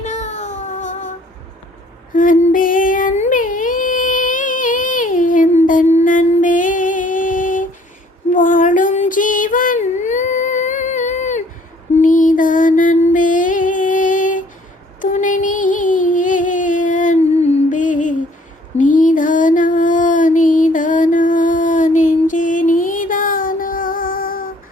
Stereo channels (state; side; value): normal; both; correlation 0.59